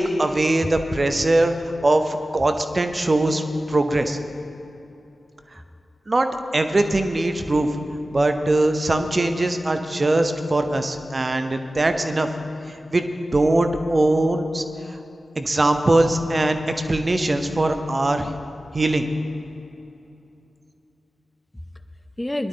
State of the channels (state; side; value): normal; both; correlation 0.96